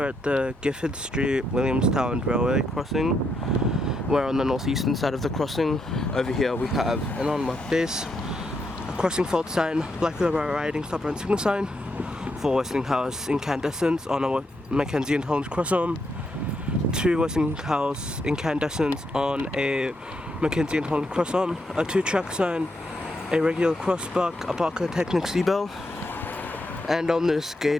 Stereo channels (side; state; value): both; normal; correlation 0.80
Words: at the Giffard Street Williamstown railway crossing. We're on the northeastern side of the crossing. Over here we have an unmarked base, a crossing fault sign, black riding stop and signal sign for Westinghouse Incandescents on a McK&H Crossarm, two Westinghouse Incandescents on a McK&H Crossarm, a 2 Trackside, a regular crossbuck, a Barker Technics bell. And on this